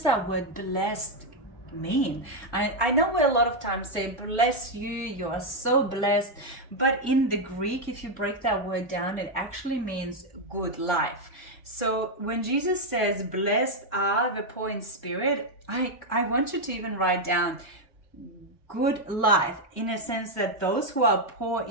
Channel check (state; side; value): normal; both; correlation 0.02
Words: that word blessed mean? I know we a lot of times say, bless you, you are so blessed. But in the Greek, if you break that word down, it actually means good life. So when Jesus says, blessed are the poor in spirit, I want you to even write down good life, in a sense that those who are poor